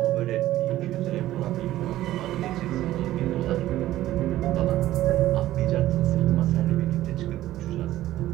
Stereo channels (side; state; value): left; quieter; 14.6 dB